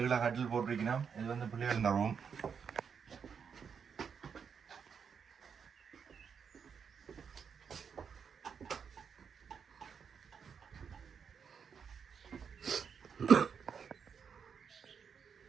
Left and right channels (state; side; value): quieter; left; 6.7 dB